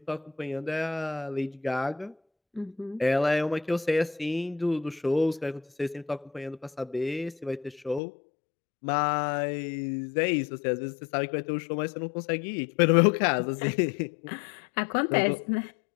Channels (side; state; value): right; drops out; at 8.0 s